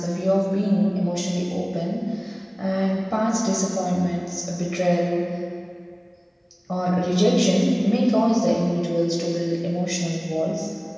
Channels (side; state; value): both; identical; correlation 1.00